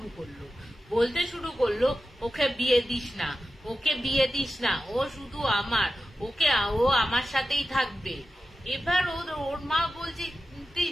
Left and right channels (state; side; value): normal; both; correlation 0.93